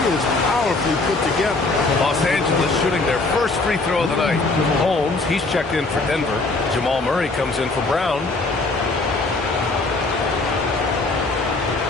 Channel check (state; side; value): quieter; right; 3.4 dB